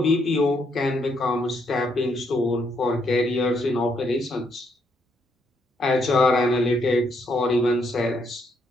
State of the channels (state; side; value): normal; both; correlation 0.75